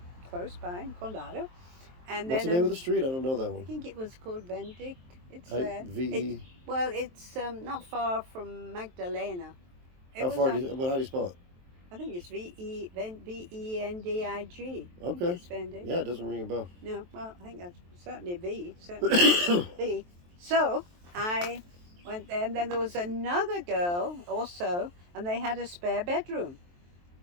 close by in Condado. And What's then the name of the street? I don't know that I one. think it was called Vendig. It's there. V-E. Well, it's not far from Magdalena. It How was far on- do you, how do you spell it? I think it's Vendig. Okay. It's Vendig. Yeah, it doesn't ring a bell. No, well, I think that's certainly V. Certainly V. So I went there, and then there was another girl also, and they had a spare bedroom.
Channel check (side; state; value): left; late; 23 ms